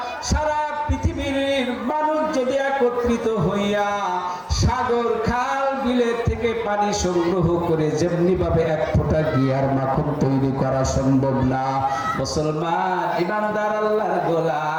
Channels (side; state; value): both; identical; correlation 1.00